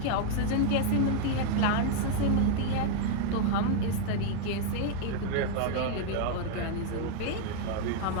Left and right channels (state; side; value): different; both; correlation 0.00